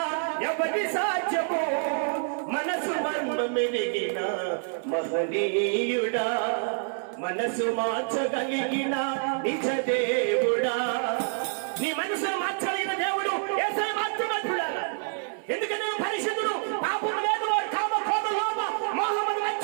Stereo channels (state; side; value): silent; left; 60 dB below the other